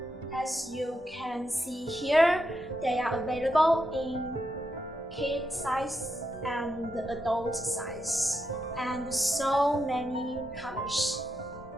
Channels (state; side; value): normal; both; correlation 0.84